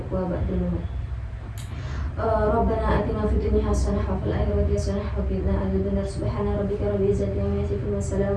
ba'dal maut. Rabbana atina fid dunya hasanah wa fil akhirati hasanah wa qina adzabannar. Subhana rabbika rabbil izzati amma yasifun wa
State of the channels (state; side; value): identical; both; correlation 1.00